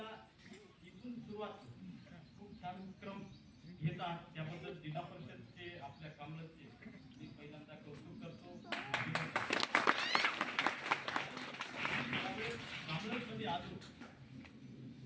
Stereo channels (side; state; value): both; identical; correlation 1.00